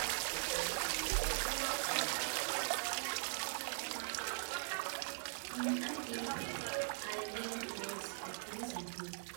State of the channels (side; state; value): left; silent; digital silence